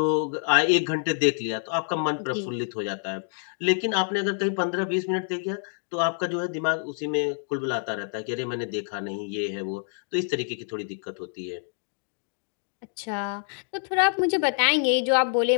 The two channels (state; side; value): silent; right; digital silence